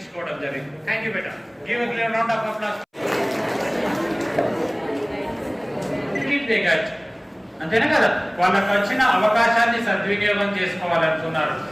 జరిగింది. Thank you beta. Give a clear round of applause. అంతేనా కదా, వాళ్ళకి వచ్చిన అవకాశాన్ని సద్వినియోగం చేసుకోవాలనుకున్నారు.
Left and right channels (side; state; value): both; identical; correlation 1.00